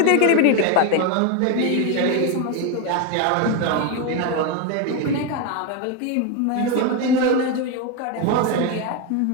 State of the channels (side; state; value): both; different; correlation 0.02